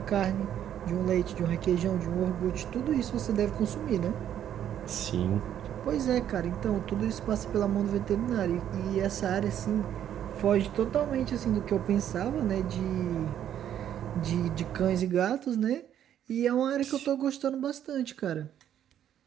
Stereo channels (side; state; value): left; quieter; 10.3 dB